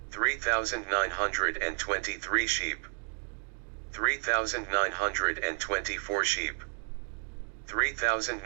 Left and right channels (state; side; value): silent; left; 57 dB below the other